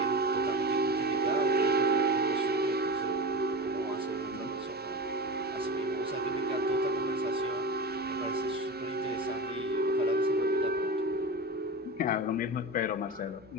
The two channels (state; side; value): normal; both; correlation 0.26